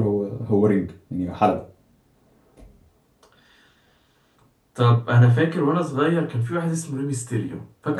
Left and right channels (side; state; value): both; identical; correlation 1.00